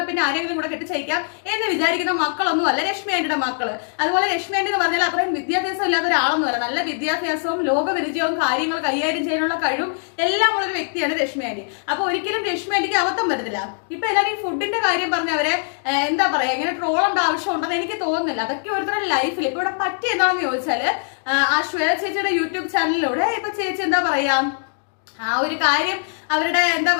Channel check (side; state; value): right; silent; digital silence